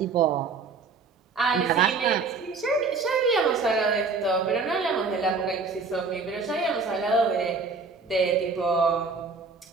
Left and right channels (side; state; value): left; quieter; 4.5 dB